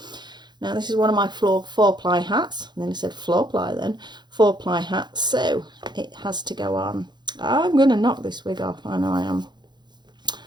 Now this is one of my four-ply hats. And then I said floor-ply then. Four-ply hats. So it has to go on. I'm going to knock this wig off. I know I am.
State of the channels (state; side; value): late; left; 0.21 ms